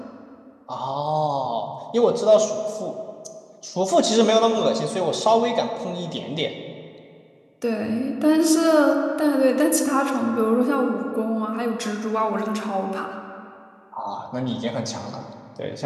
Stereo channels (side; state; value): both; identical; correlation 1.00